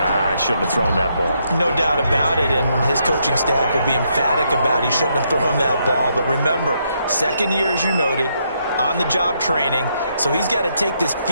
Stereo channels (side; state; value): both; inverted; correlation -0.76